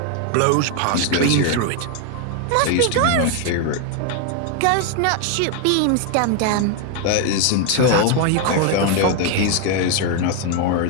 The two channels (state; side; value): different; both; correlation 0.01